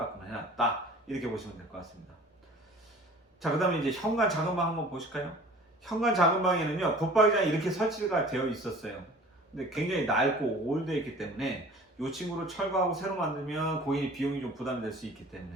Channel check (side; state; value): both; normal; correlation 0.46